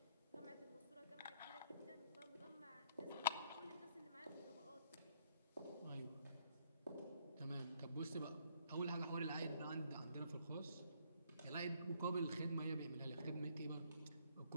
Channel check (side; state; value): both; inverted; correlation -0.67